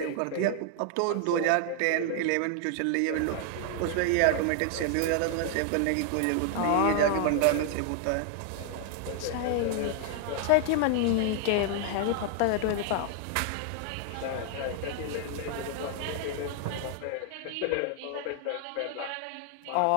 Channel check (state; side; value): different; both; correlation 0.00